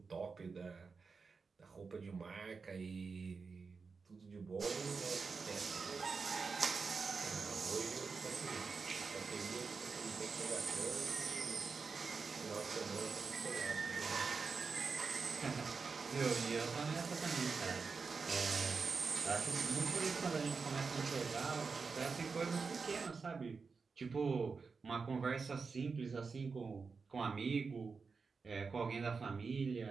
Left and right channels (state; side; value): quieter; left; 4.9 dB